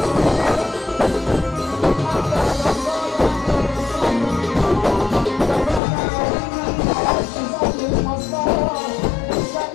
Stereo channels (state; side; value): drops out; right; at 5.8 s